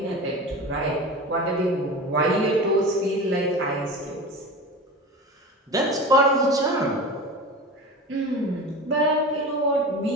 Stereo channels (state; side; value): normal; both; correlation 0.31